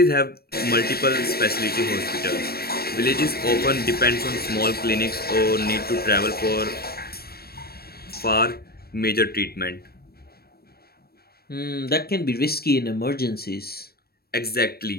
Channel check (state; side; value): late; right; 0.45 ms